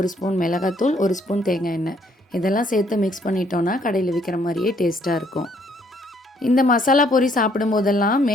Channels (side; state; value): both; normal; correlation 0.67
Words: ஸ்பூன் மிளகாத்தூள், 1 ஸ்பூன் தேங்காய் எண்ணெய் இதெல்லாம் சேர்த்து மிக்ஸ் பண்ணிட்டோன்னா கடையில் விற்கிற மாதிரியே டேஸ்ட்டாக இருக்கும். இந்த மசாலா பொரி சாப்பிடும் போதெல்லாம்